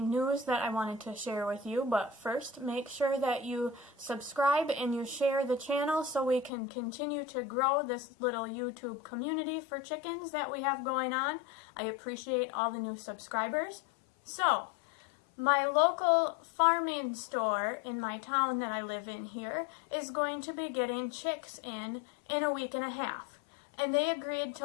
news that I wanted to share with you, but first make sure that you subscribe and you share the channel so we can continue to grow this little YouTube community for chickens that we have going on. I appreciate all the new subscribers. So, my local farming store in my town that I live in here is going to be getting chicks in a week and a half. And they agreed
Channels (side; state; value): right; drops out; at 6.5 s